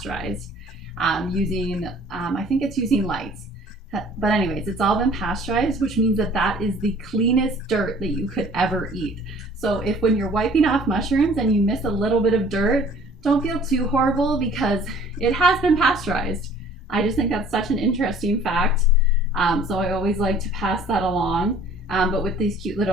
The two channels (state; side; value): normal; both; correlation 0.52